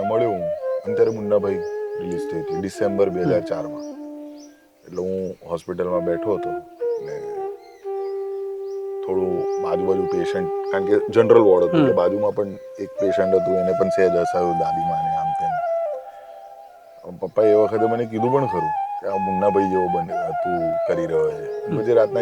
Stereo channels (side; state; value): both; identical; correlation 1.00